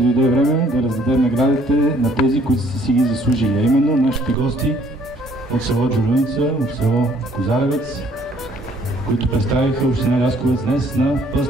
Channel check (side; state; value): both; normal; correlation 0.62